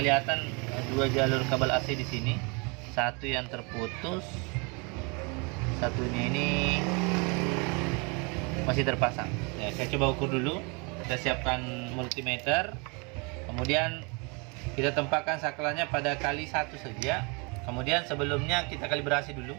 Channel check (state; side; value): quieter; left; 31.3 dB